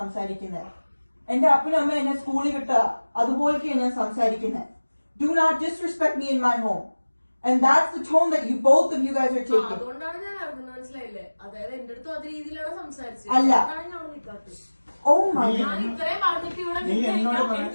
എന്റെ അപ്പനും അമ്മ എന്നെ സ്കൂളിൽ വിട്ട അതുപോലെയൊക്കെയാണ് ഞാൻ സംസാരിക്കുന്നത്. Do not disrespect me in my home. And that's the tone that you both of you guys are taking. അതുകൊണ്ടാണ് ഞാൻ അറിഞ്ഞത്, മനസ്സിലായില്ലേ? അതായത് എന്റെ അടുത്തും അതേ രീതിയിലാണ് സംസാരിച്ചത്. അല്ല. Oh my God. ഞാൻ ഇത്രയും പറഞ്ഞിട്ട് ഇവിടെ നീ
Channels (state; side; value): inverted; both; correlation -1.00